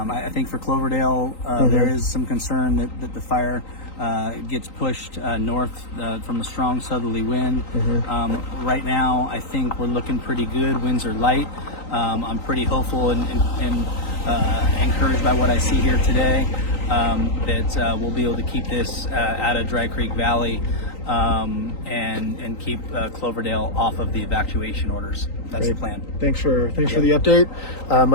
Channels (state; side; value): late; right; 3.9 ms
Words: think for Cloverdale, there is some concern that the fire gets pushed north from a strong southerly wind. Right now, I think we're looking pretty good. Winds are light. I'm pretty hopeful and encouraged by what I see here today that we'll be able to keep this out of Dry Creek Valley and keep Cloverdale off of the evacuation orders. That's Great. the plan. Thanks for the update.